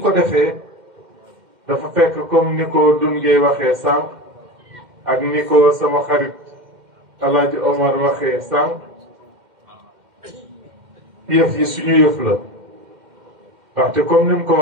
ko defee dafa fekk comme ni ko Dungé waxee sànq ak ni ko sama xarit Alaaji Omar waxee sànq yëf yi suñu yëf la ndaxte comme ni mu ko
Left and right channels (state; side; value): late; left; 2.1 ms